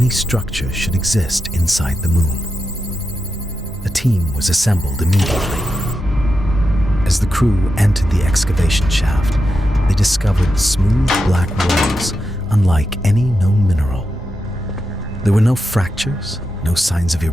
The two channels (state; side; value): normal; both; correlation 0.88